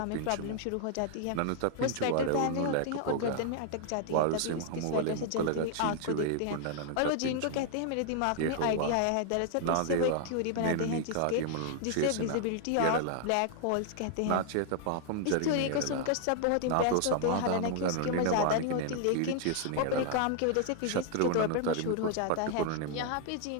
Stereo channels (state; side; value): different; both; correlation 0.00